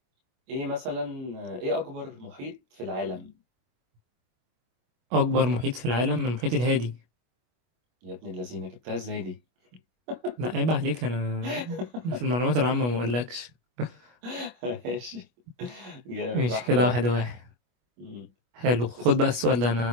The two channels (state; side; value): late; left; 25 ms